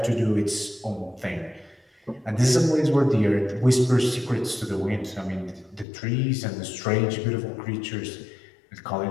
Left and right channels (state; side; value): drops out; right; at 5.9 s